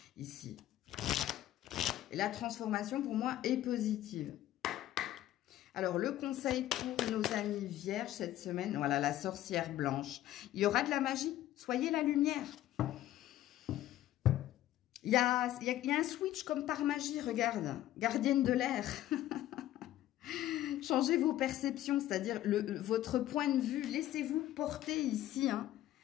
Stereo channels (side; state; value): right; quieter; 13.6 dB